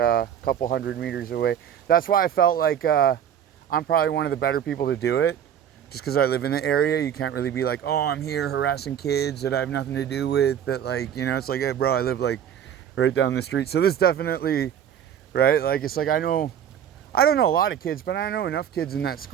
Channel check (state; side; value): quieter; left; 9.3 dB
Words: couple 100 meters away. That's why I felt like I'm probably one of the better people to do it. Just because I live in the area, you can't really be like, oh, I'm here harassing kids that I have nothing to do with. That, like, you know, it's like, hey, bro, I live like right down the street. So this definitely, right? Like, it's like I don't know a lot of kids, but I know enough kids in that